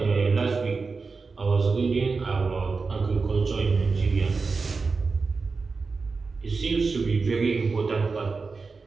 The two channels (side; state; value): left; quieter; 4.4 dB